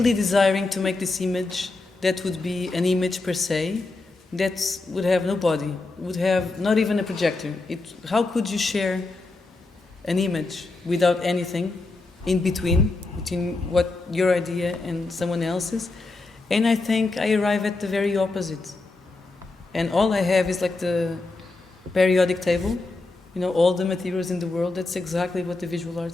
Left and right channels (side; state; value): right; quieter; 3.4 dB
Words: desiring to make this image that would be an image per se, that would have no body, would have not even a projector. How could you share an image without anything in between what your idea and someone else's? And I think I arrive at the very opposite. And all I have is like the periodic table, all the materials in the world. That's exactly what the visual